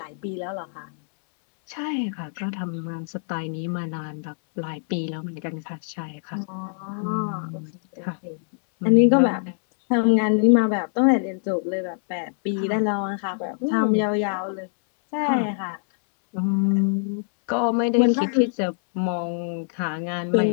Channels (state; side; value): silent; right; 61 dB below the other